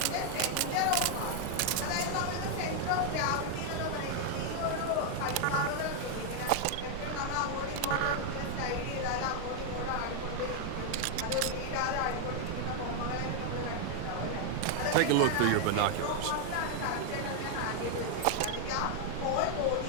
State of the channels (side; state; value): both; different; correlation 0.00